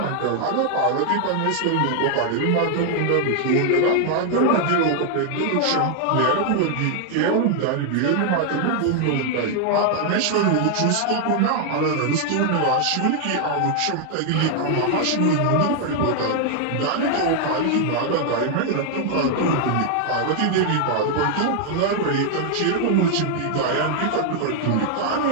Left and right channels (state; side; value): different; both; correlation 0.00